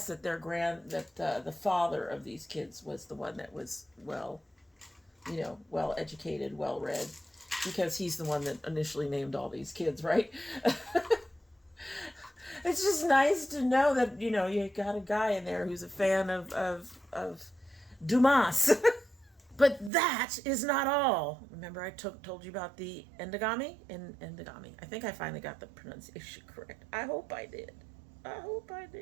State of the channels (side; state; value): left; drops out; at 19.9 s